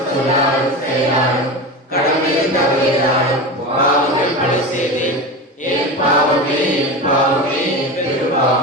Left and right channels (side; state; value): both; normal; correlation 0.25